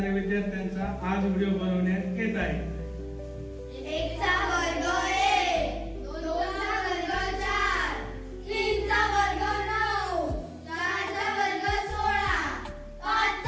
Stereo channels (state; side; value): identical; both; correlation 1.00